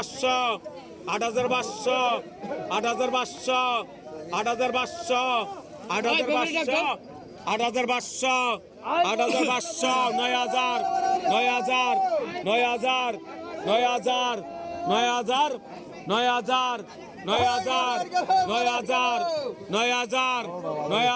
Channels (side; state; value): both; identical; correlation 1.00